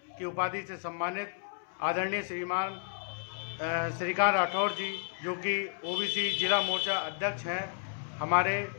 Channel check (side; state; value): right; silent; 56 dB below the other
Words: की उपाधि से सम्मानित आदरणीय श्रीमान श्रीकांत राठौर जी, जो कि ओबीसी जिला मोर्चा अध्यक्ष हैं, हमारे